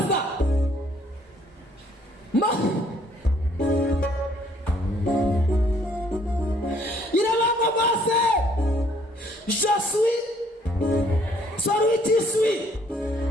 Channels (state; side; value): normal; both; correlation 0.64